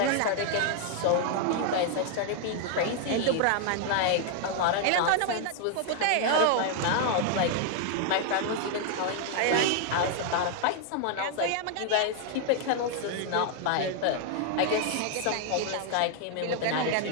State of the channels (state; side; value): different; both; correlation 0.00